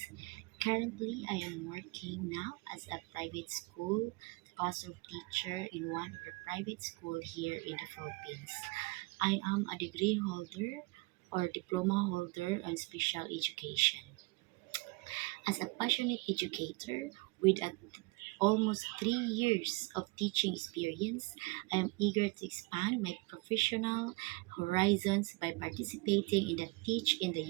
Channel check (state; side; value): quieter; left; 26.7 dB